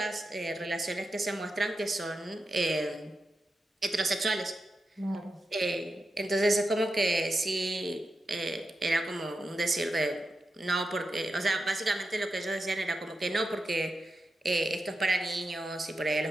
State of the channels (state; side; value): normal; both; correlation 0.89